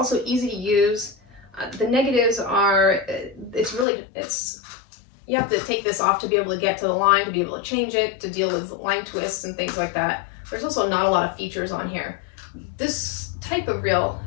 easy to use. The negatives are you have to take this off to be able to get to the line, to be able to change it, to deal with line twists and things like that. There's also not a lot of features on here. This type of reel,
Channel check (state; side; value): drops out; right; at 3.9 s